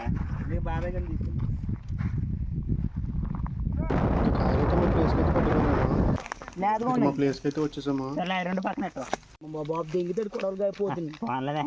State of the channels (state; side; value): identical; both; correlation 1.00